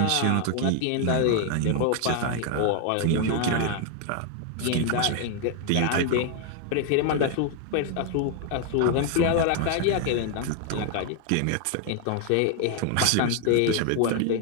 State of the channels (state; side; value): different; both; correlation 0.00